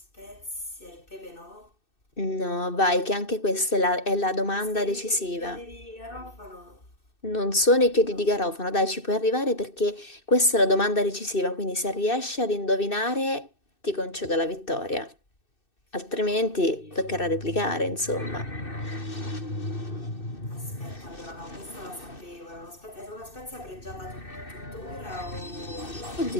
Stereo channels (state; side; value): late; right; 2.6 ms